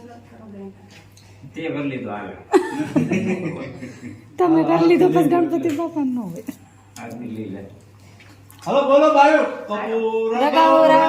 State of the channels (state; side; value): identical; both; correlation 1.00